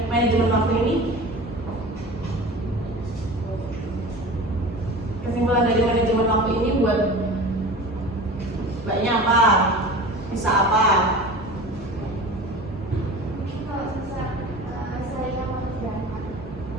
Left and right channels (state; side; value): normal; both; correlation 0.36